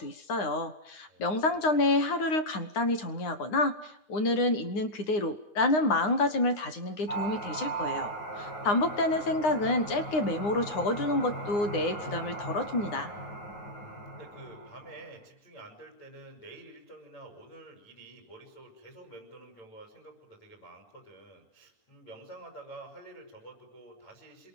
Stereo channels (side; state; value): right; late; 9.7 ms